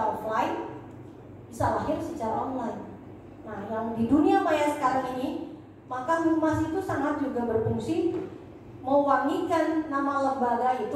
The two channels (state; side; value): identical; both; correlation 1.00